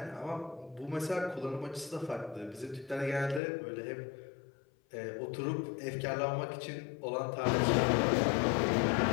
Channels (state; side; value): drops out; right; at 3.4 s